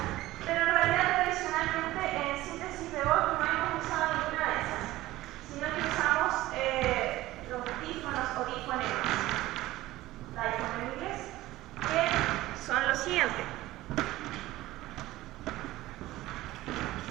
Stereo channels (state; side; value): quieter; left; 16.9 dB